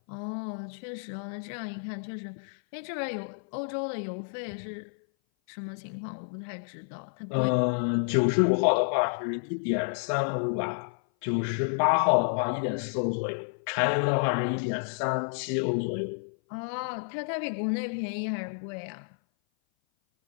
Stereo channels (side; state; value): right; silent; 56 dB below the other